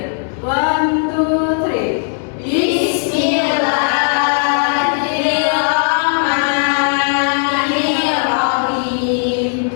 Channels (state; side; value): silent; right; 62 dB below the other